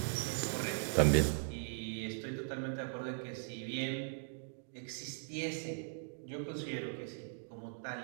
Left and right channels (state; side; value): silent; left; digital silence